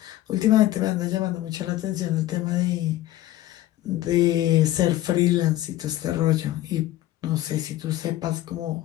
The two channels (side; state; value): right; quieter; 14.9 dB